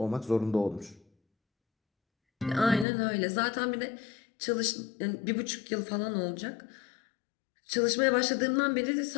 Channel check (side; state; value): right; drops out; at 2.9 s